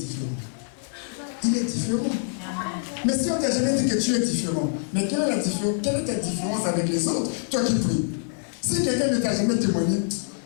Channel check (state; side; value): silent; right; digital silence